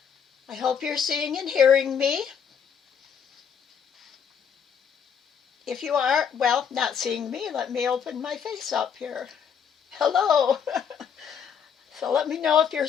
I hope you're seeing and hearing me. If you are, well, not seeing me, let me open my face up here. Hello. So let me know if you're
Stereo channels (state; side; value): quieter; right; 7.3 dB